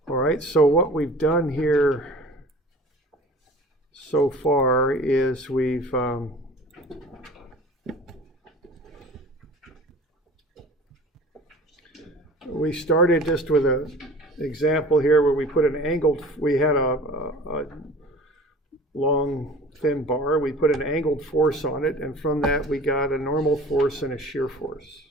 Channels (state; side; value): normal; both; correlation 0.42